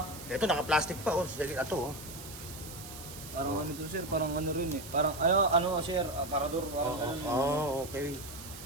Ito, naka-plastic pa, oh. Sige, ito, oh. Parang ano to sir, parang ano rin eh. Parang ano sir, aparador, parang ano. Okay.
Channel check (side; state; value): right; noise; hiss, 13 dB below the sound